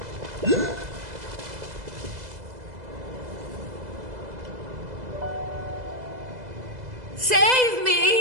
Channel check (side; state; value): left; late; 2.0 ms